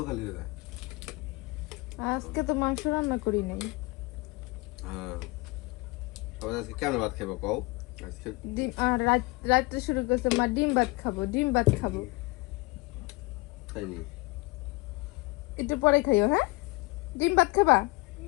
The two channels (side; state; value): right; quieter; 24.4 dB